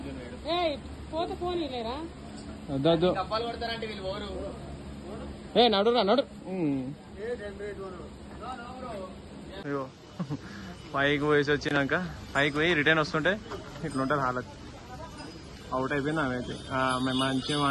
వద్దు ఏ నడురా నడు అయ్యో పైకి పోయేసి వచ్చినాక పైకి పోయి రిటర్న్ వస్తుంటే ఇట్లుంటుంది హాలత్ అవుట్ అయిపోయింది ఆమె అయితే మేము మంచిగా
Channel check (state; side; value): identical; both; correlation 1.00